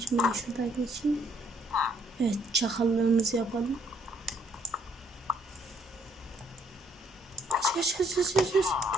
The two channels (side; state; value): both; normal; correlation 0.67